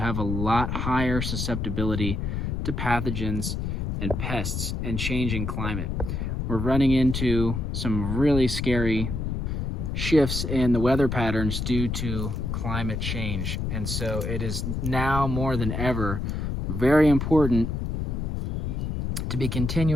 a lot higher susceptibility to pathogens and pests and changing climate. We're running into some really scary shifts in the weather patterns due to climate change. And so it is now more than ever very important to be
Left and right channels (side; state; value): left; noise; rumble, 2 dB below the sound